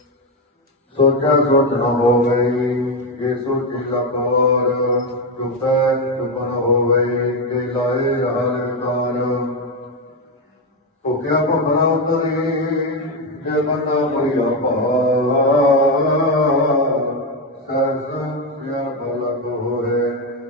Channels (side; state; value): both; normal; correlation 0.09